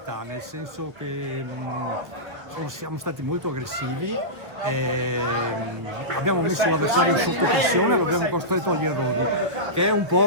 nel senso che siamo stati molto aggressivi, abbiamo messo l'avversario sotto pressione, lo abbiamo costretto agli errori, che è un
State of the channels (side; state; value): left; late; 1.1 ms